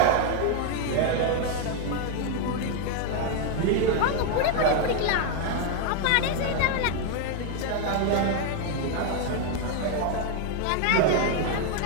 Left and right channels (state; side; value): different; both; correlation 0.01